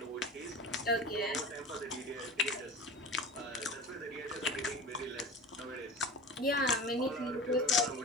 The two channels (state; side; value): normal; both; correlation 0.33